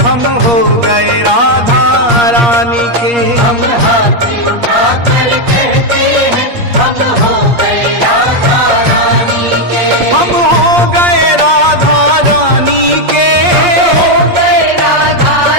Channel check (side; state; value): left; late; 8.5 ms